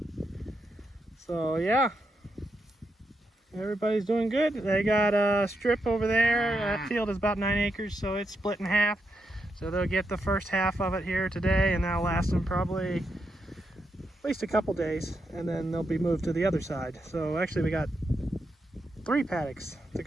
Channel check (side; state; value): both; normal; correlation 0.83